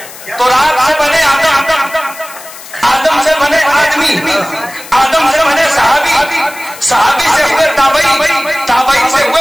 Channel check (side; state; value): left; noise; hiss, 16 dB below the sound